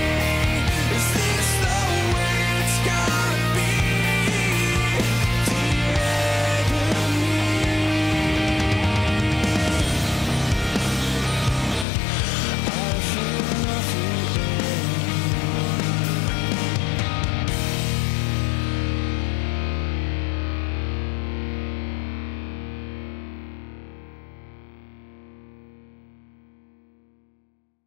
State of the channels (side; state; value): right; drops out; at 11.9 s